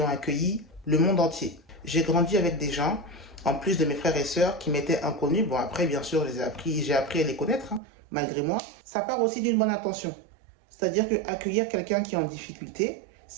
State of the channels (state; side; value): drops out; left; at 7.8 s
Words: accueilli le monde entier. J'ai grandi avec des gens, en plus de mes frères et sœurs, qui m'étaient inconnus. Bon, après, bien sûr, j'ai appris à les connaître, malgré moi. Ça part aussi d'une bonne intention. C'est-à-dire que accueillir quelqu'un qui est en difficulté,